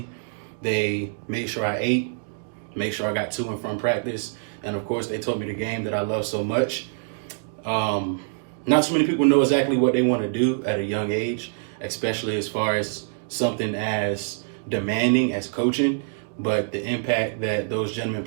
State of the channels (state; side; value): silent; left; digital silence